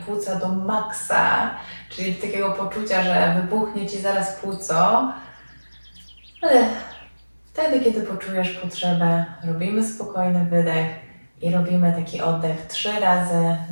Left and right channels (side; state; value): both; inverted; correlation -1.00